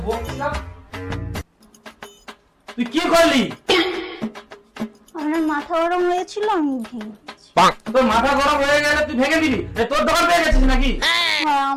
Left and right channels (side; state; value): both; identical; correlation 1.00